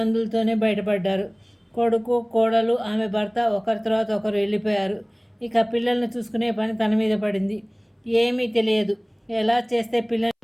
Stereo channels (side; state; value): both; identical; correlation 1.00